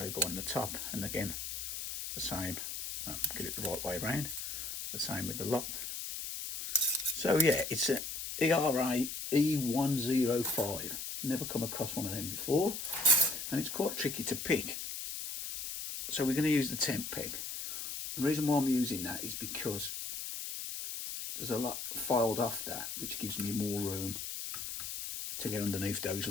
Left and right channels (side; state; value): left; noise; hiss, 6 dB below the sound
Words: on the top. And again, the same. Get it the right way around. The same with the lock. So yeah, it's an E105 E105. Never come across one of them before. And it's quite tricky to pick. So we're going to use the temp peg. The reason why I'm using that is because there's a lot filed off that, which gives me more room to get underneath those